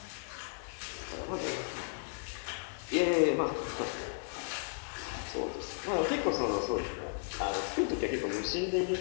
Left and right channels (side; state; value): right; silent; 55 dB below the other